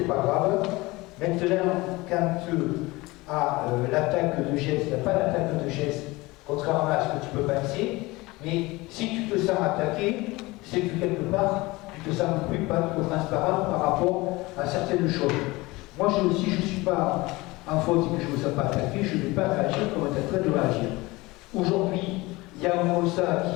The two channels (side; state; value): right; quieter; 21.8 dB